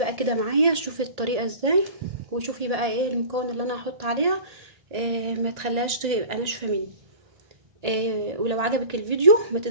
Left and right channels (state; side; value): late; left; 1.8 ms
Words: كده معايا شوفي الطريقة ازاي، وشوفي بقى ايه المكون اللي انا هحط عليها. ما تخليهاش تبقى ناشفه مني. ولو عجبك الفيديو ما